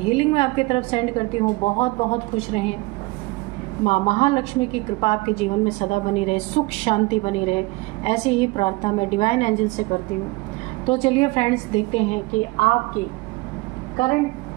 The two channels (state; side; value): quieter; left; 23.4 dB